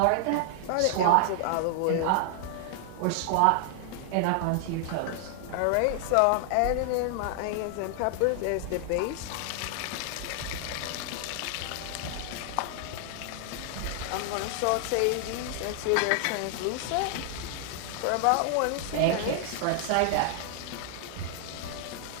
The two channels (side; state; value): both; different; correlation 0.00